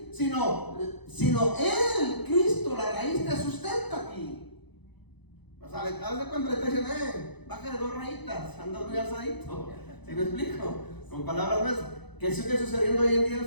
sino Él, Cristo, la raíz te sustenta aquí. O sea, haz de cuenta, le está diciendo, bájale 2 rayitas, anda muy alzadito. ¿Sí me explico? Con palabras más. ¿Qué sigue sucediendo hoy en día en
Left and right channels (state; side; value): late; right; 0.99 ms